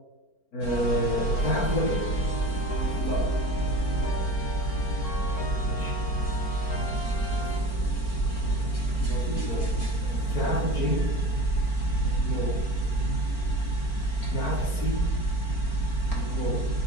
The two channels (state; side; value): late; right; 4.4 ms